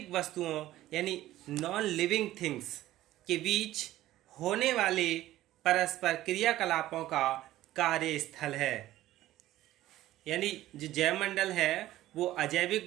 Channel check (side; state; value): left; quieter; 14.9 dB